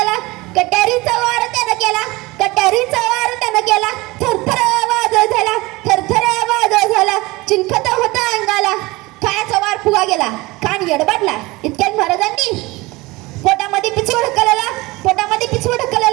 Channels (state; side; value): quieter; left; 22.0 dB